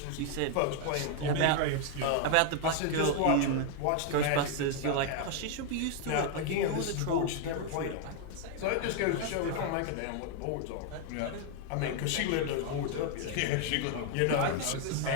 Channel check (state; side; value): different; both; correlation 0.00